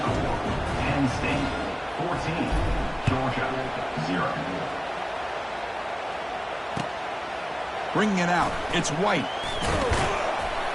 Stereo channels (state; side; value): identical; both; correlation 1.00